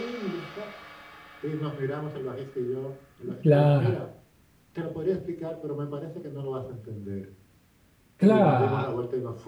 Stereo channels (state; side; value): identical; both; correlation 1.00